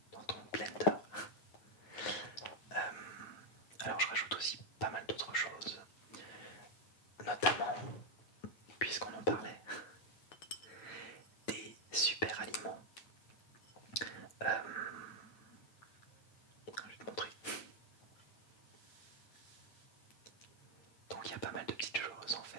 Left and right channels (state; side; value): late; right; 9.1 ms